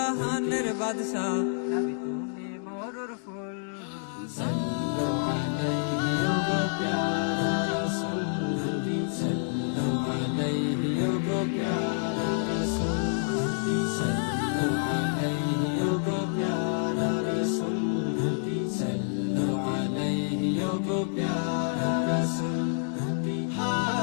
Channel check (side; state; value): right; silent; digital silence